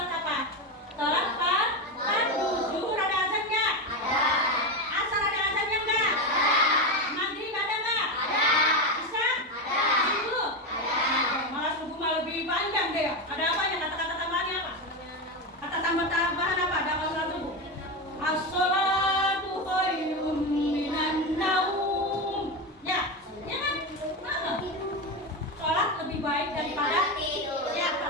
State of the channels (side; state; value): both; normal; correlation 0.15